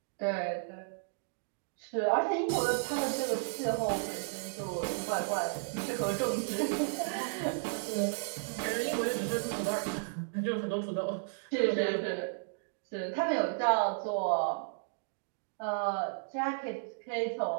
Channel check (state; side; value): silent; left; digital silence